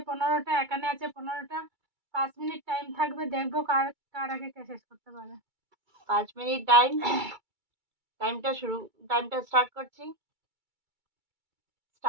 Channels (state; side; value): late; left; 2.3 ms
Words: 15টা, এখানে আছে 15টা। 5 মিনিট টাইম থাকবে, দেখবো কার কার আগে কে শেষ করতে পারে। 5 মিনিট টাইমটা স্টার্ট করছি।